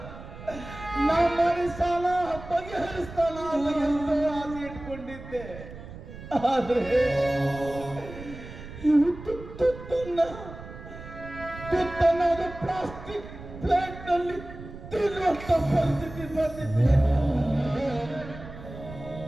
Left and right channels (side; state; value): right; noise; rumble, 14 dB below the sound